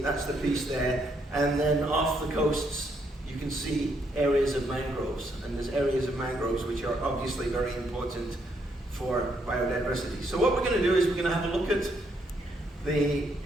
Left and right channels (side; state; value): both; normal; correlation 0.74